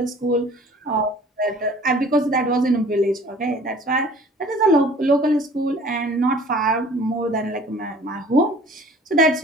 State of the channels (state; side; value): normal; both; correlation 0.49